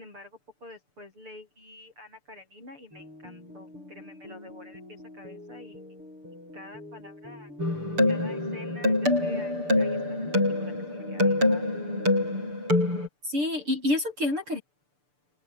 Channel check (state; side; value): late; left; 6.8 ms